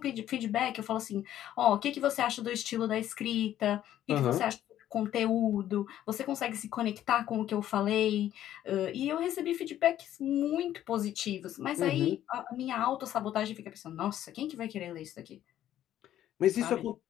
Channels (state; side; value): quieter; right; 12.0 dB